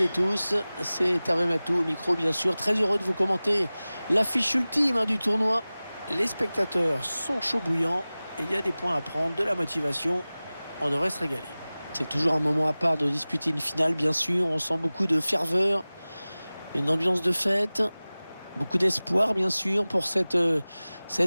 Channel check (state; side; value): inverted; both; correlation -0.98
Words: tous. C'est Hervé Matou au micro, bien sûr. Très heureux de vous commenter l'affiche ultime du tournoi. Les spectateurs sont chauds bouillants et il y a des points à prendre, de la motivation. On devrait se régaler. C'est toujours un moment à part de disputer une finale, bien sûr. On sent beaucoup de ferveur, une ambiance de fête, beaucoup d'espoir, bien sûr, pour cette